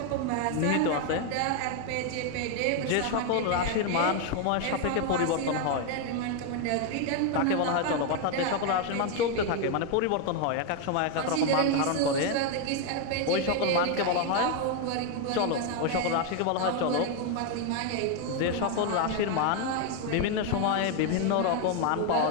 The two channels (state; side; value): different; both; correlation 0.01